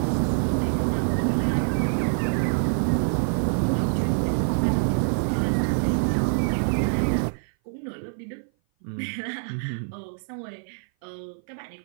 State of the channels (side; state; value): left; silent; 57 dB below the other